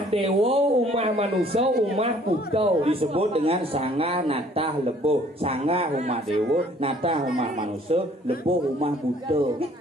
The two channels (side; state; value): both; normal; correlation 0.57